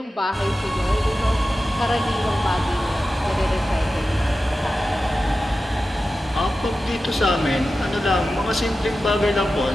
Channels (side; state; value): both; normal; correlation 0.93